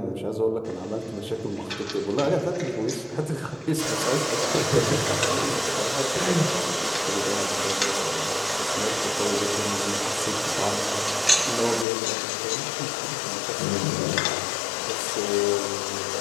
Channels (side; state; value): right; drops out; at 11.9 s